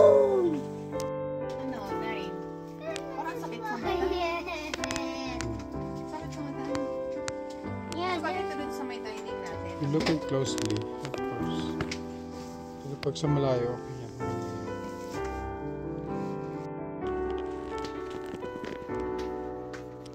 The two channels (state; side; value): identical; both; correlation 1.00